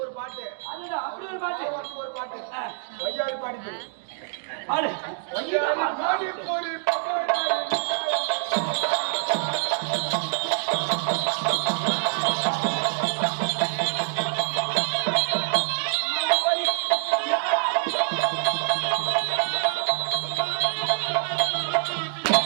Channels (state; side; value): silent; left; digital silence